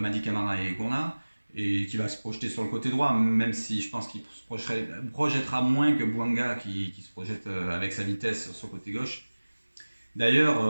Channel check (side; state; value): both; inverted; correlation -1.00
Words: Camara et Gourna, et qui va se projeter sur le côté droit, même si je pense qu'il se projettera moins que Bouanga qui se projette avec sa vitesse sur le côté gauche. D'ailleurs,